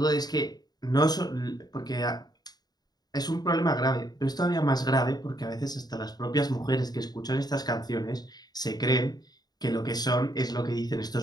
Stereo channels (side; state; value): right; late; 0.19 ms